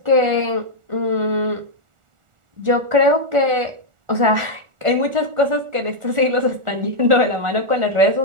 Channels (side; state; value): left; late; 1.4 ms